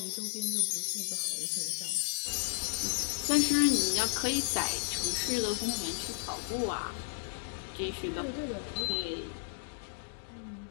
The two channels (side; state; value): right; silent; digital silence